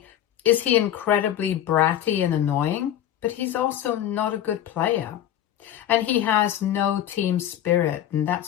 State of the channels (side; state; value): right; quieter; 11.3 dB